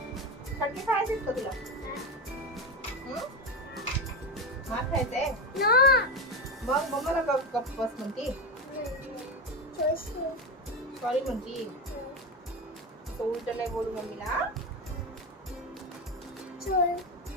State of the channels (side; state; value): both; normal; correlation 0.17